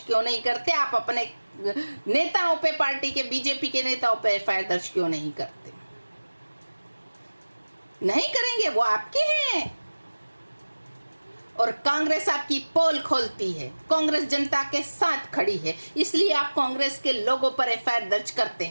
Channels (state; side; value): inverted; both; correlation -1.00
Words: नहीं करते? आप अपने नेताओं पे, पार्टी के, बीजेपी के नेताओं पे एफआईआर दर्ज क्यों नहीं करते? नहीं करेंगे, वो आपके हैं। और कांग्रेस आपकी पोल खोलती है, कांग्रेस जनता के साथ खड़ी है, इसलिए आप कांग्रेस के लोगों पर एफआईआर दर्ज करते